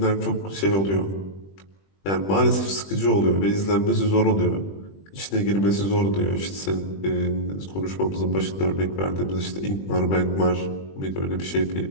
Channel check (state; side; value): late; right; 20 ms